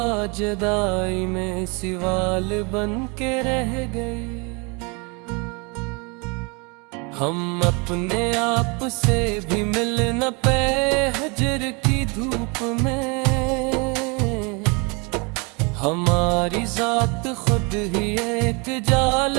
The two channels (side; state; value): left; quieter; 30.9 dB